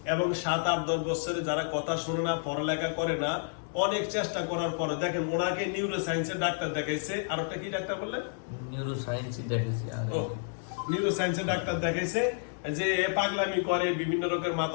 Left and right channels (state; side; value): silent; right; 58 dB below the other